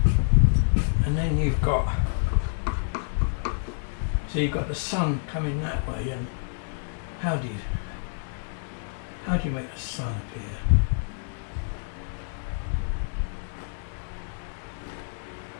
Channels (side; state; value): right; silent; digital silence